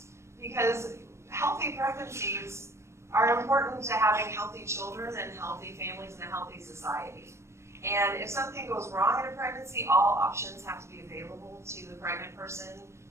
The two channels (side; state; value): left; late; 0.13 ms